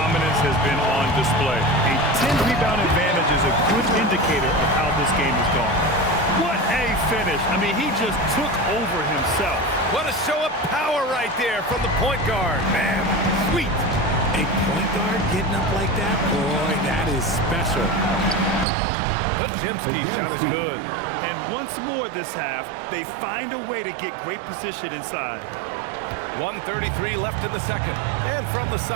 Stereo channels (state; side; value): drops out; left; at 18.7 s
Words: has been on display. A 10-rebound advantage is a good indicator of how this game has gone. What a finish. I mean, he just took over himself. What a show of power right there from the point guard. Man, sweet. A point guard getting up like that? Boy, that is special. Podziemski's shot is good. And once more this half, they find a way to get great position inside. 1:33 left in the second. And from the